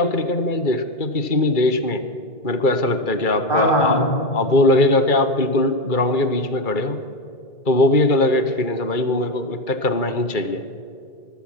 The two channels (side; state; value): right; late; 2.3 ms